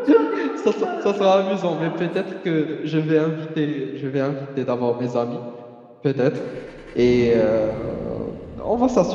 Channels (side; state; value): both; identical; correlation 1.00